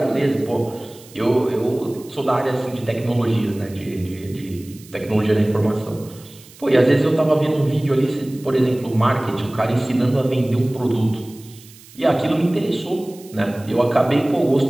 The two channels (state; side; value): noise; right; hiss, 22 dB below the sound